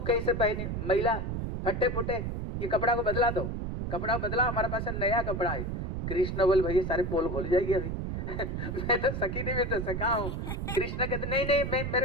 कैसे पहने महिला फटे फुटे, ये कपड़ा को बदला दो, कपड़ा बदला, हमारे पास नया कपड़ा है। कृष्ण बोल भैया सारे पोल खोल जाएगी अभी मैं तो सखी नहीं, मैं तो सखा हूँ। कृष्ण कहते नहीं नहीं मैं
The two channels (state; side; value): noise; right; rumble, 3 dB below the sound